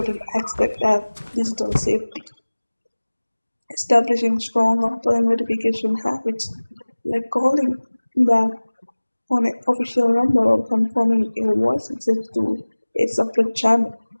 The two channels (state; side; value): inverted; both; correlation -1.00